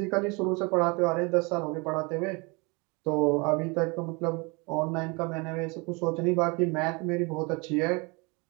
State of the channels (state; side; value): quieter; left; 28.8 dB